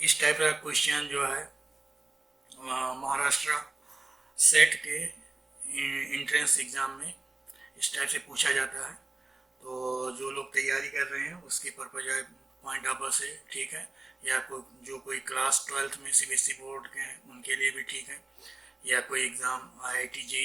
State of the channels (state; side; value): quieter; left; 3.1 dB